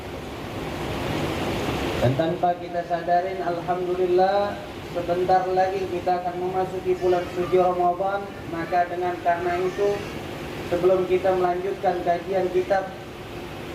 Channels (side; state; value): both; identical; correlation 1.00